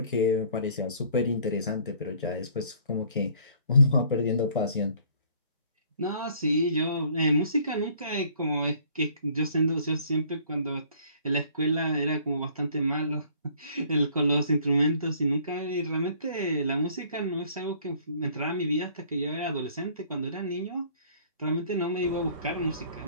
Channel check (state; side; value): inverted; both; correlation -0.57